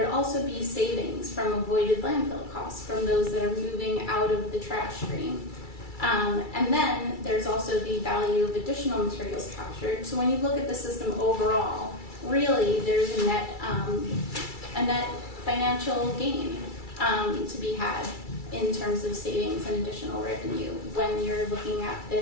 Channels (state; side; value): late; right; 2.3 ms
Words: also be savings from avoided landfill costs from those that are moving out of the trash stream. And then there's also the value of additional materials captured. So when you look at the system overall, really there's a net financial gain to be had in terms of savings and additional revenue when you're looking at